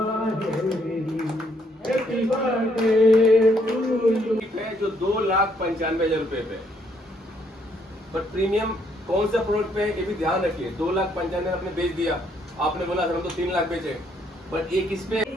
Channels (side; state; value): both; normal; correlation 0.70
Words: जो 2,95,000 रुपए पे, पर प्रीमियम कौन सा प्रोडक्ट पे है ये भी ध्यान रखिए. 2,95,000 आपने बेच दिया, आपने बोला सर हम तो 3 लाख बेचे, पर एक इस पे